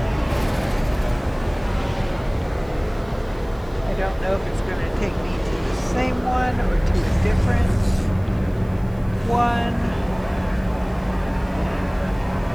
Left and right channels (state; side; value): noise; right; hiss, 29 dB below the sound